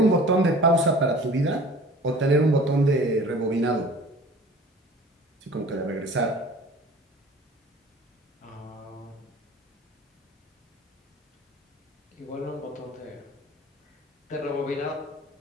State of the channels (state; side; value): normal; both; correlation 0.44